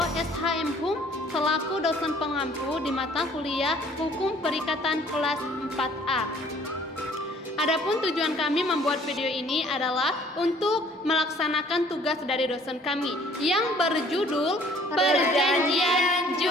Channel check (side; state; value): both; normal; correlation 0.57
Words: SHM HUM, selaku dosen pengampu di mata kuliah Hukum Perikatan kelas 4A. Adapun tujuan kami membuat video ini adalah untuk melaksanakan tugas dari dosen kami yang berjudul Perjanjian